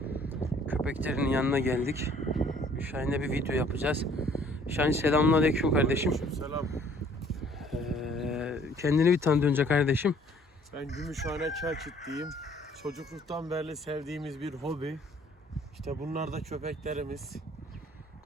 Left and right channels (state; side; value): normal; both; correlation 0.57